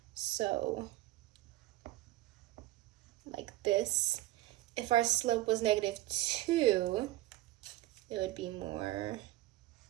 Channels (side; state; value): left; quieter; 16.5 dB